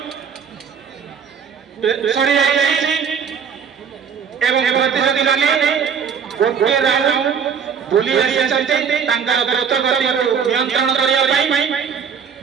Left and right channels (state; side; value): quieter; left; 7.0 dB